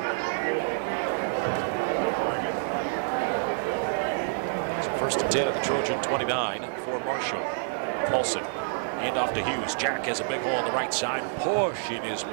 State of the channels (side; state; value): left; silent; digital silence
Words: So 1st and 10 at the Trojan 29 for Marshall. Paulson, hand off to Hughes. Jack has a big hole on the right side, pushing his